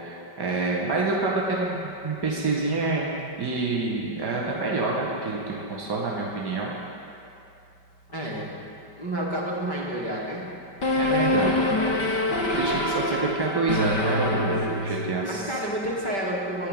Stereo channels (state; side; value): late; right; 5.1 ms